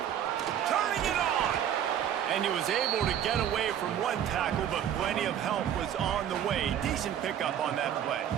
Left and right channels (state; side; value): quieter; left; 9.9 dB